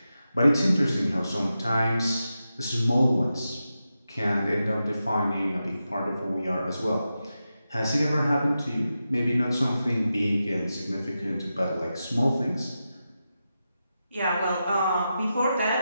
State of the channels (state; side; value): inverted; both; correlation -0.90